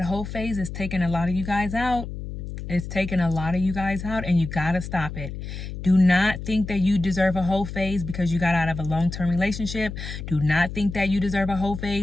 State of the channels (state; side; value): noise; left; hum, 8 dB below the sound